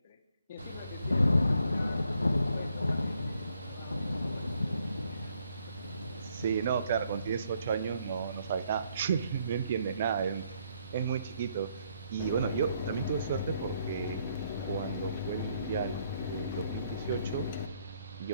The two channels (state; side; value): inverted; both; correlation -0.71